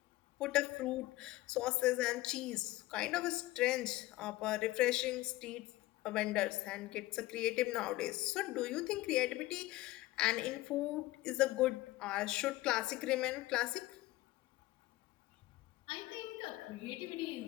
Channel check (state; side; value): quieter; right; 18.0 dB